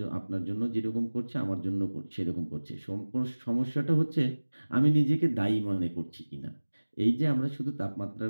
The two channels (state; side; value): inverted; both; correlation -1.00